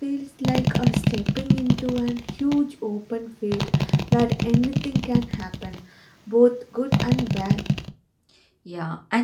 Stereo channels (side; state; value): both; identical; correlation 1.00